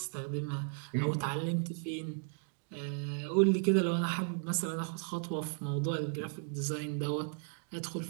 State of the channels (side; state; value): left; silent; 54 dB below the other